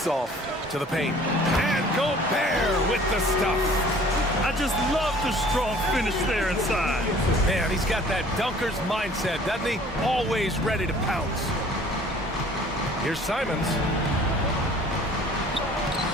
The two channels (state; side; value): normal; both; correlation 0.51